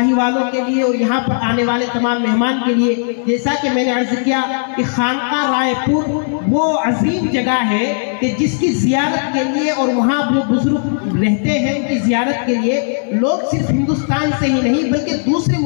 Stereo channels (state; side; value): silent; right; 57 dB below the other